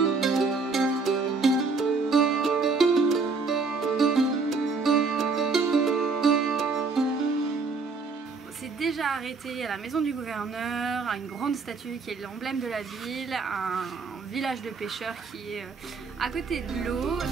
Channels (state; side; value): quieter; left; 4.4 dB